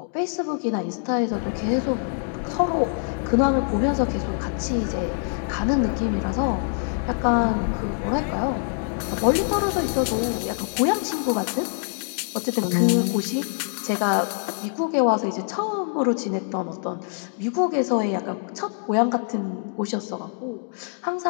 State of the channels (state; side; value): silent; right; 62 dB below the other